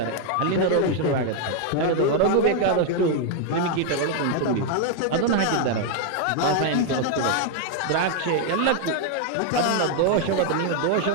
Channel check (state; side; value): different; both; correlation 0.00